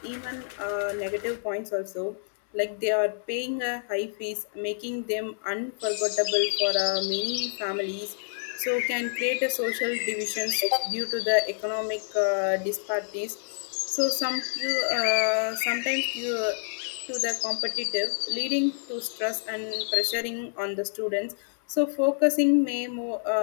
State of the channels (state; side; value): silent; right; 59 dB below the other